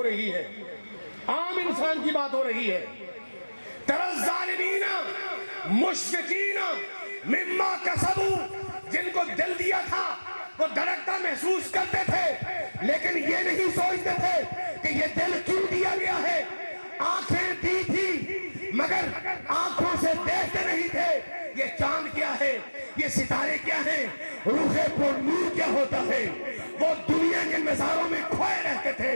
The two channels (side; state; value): both; inverted; correlation -1.00